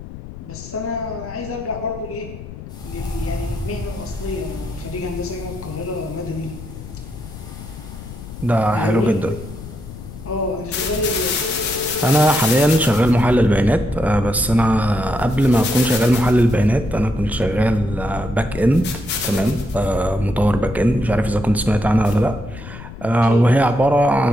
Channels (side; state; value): left; noise; rumble, 13 dB below the sound